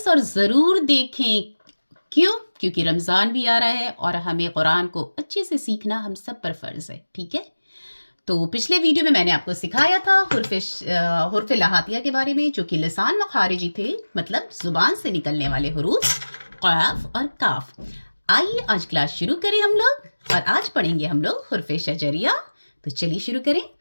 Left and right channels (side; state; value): both; inverted; correlation -1.00